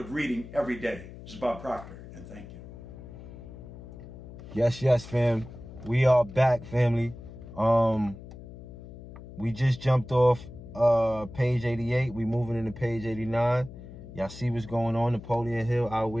reading every day. This is Bob Proctor, and thank you. Yes, fam. We are back, family. We just jumped off page 88. We moving into page 89. Y'all see what's going on. Napoleon Hill,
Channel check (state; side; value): noise; left; hum, 15 dB below the sound